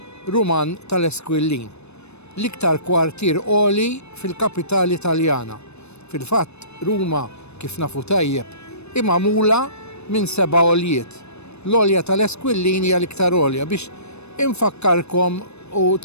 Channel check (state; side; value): late; right; 0.81 ms